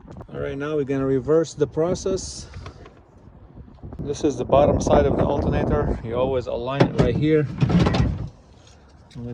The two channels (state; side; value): identical; both; correlation 1.00